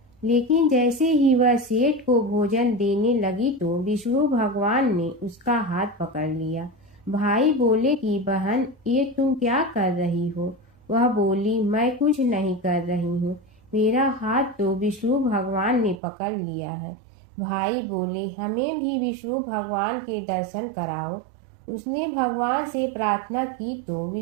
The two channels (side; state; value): left; drops out; at 16.0 s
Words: लेकिन जैसे ही वह सेठ को भोजन देने लगी तो विष्णु भगवान ने उसका हाथ पकड़ लिया। भाई बोले कि बहन, ये तुम क्या कर रही हो? वह बोली, मैं कुछ नहीं कर रही हूँ, मेरा हाथ तो विष्णु भगवान ने पकड़ लिया है। भाई बोले, हमें भी विष्णु भगवान के दर्शन कराओ। उसने भगवान से प्रार्थना की तो